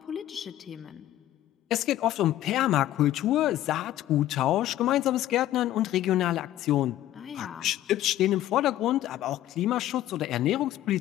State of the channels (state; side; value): quieter; right; 13.5 dB